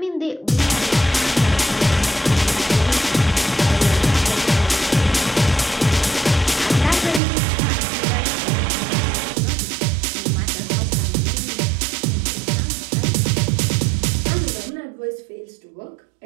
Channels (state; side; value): drops out; left; at 7.2 s